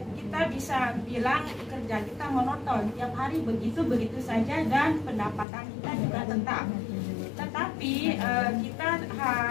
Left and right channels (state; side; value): drops out; right; at 5.5 s